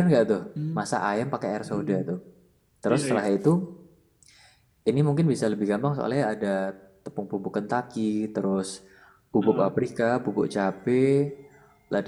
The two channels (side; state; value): both; identical; correlation 1.00